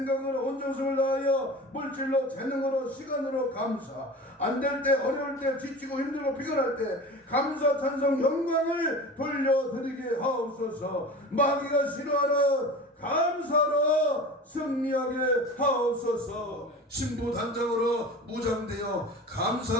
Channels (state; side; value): normal; both; correlation 0.35